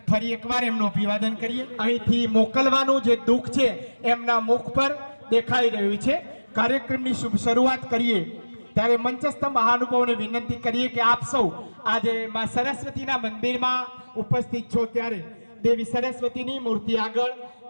ફરી એકવાર એમનું અભિવાદન કરીએ. અહીંથી મોકલવાનું જે દુઃખ છે એમના મુખ પર દેખાઈ રહ્યું છે. કાર્યક્રમની શુભ શરૂઆત કરીએ ત્યારે મંચસ્થ મહાનુભાવોને વિનંતી કરીએ કે આપ સૌ આજે માં સરસ્વતીના મંદિરમાં ઉપસ્થિત છો ત્યારે દેવી સરસ્વતીની મૂર્તિ આગળ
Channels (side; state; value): both; inverted; correlation -1.00